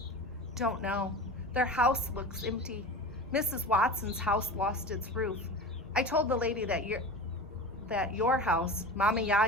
Don't know. Their house looks empty. Mrs. Watson's house lost its roof. I told the lady that your house, Mama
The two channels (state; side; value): normal; both; correlation 0.31